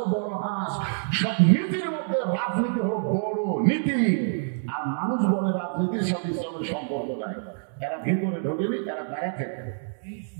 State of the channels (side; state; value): left; silent; 61 dB below the other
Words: বড় হাঁস, সব নীতির মধ্যে রাজনীতি হলো বড় নীতি, আর মানুষ বলে রাজনীতির সাথে ইসলামের সম্পর্ক নাই, এরা ভিতরে ঢোকেনি, এরা বাইরে থেকে